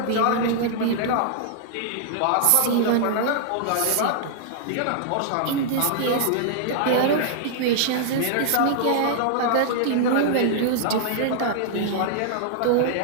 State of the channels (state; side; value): different; both; correlation -0.01